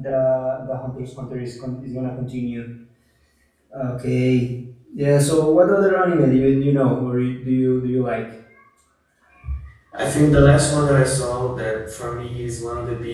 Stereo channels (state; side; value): identical; both; correlation 1.00